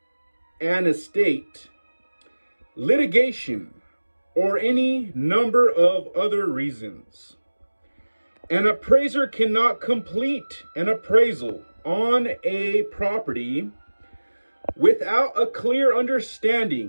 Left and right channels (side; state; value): both; inverted; correlation -1.00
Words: estate, litigation, or any number of other reasons. An appraiser cannot complete an appraisal on a property without a clear